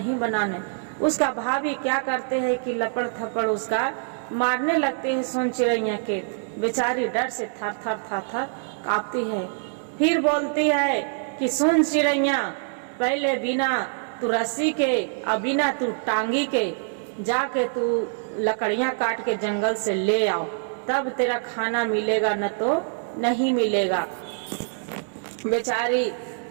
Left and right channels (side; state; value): left; silent; digital silence